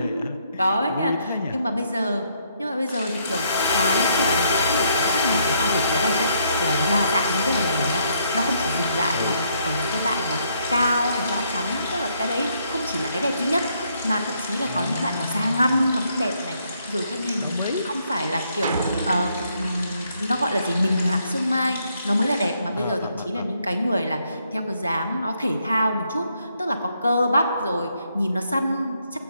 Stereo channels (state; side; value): inverted; both; correlation -0.73